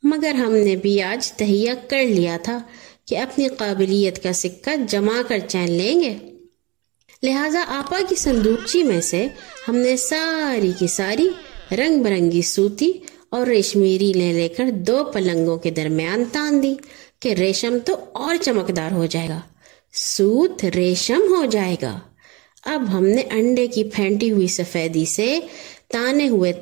मगर हमने भी आज तहिया कर लिया था कि अपनी काबिलियत का सिक्का जमा कर चैन लेंगे। लिहाजा आपा की संदूकची में से हमने सारी की सारी रंग बिरंगी सूती और रेशमी रीलें लेकर 2 पलंगों के दरमियान तान दी कि रेशम तो और चमकदार हो जाएगा, सूत रेशम हो जाएगा। अब हमने अंडे की फेंटी हुई सफेदी से ताने हुए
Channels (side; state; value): left; quieter; 24.8 dB